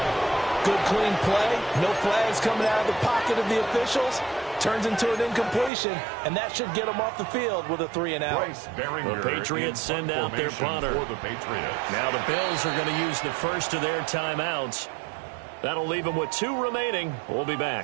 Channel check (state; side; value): drops out; left; at 5.7 s